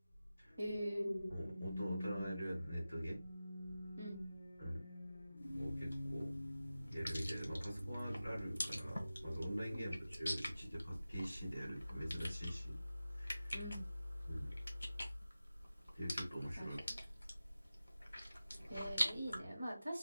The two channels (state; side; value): inverted; both; correlation -0.95